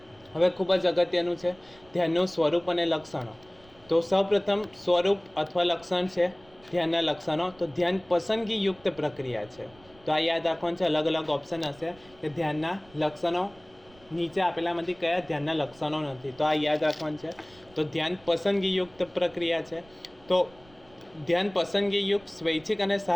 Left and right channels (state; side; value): noise; right; rumble, 27 dB below the sound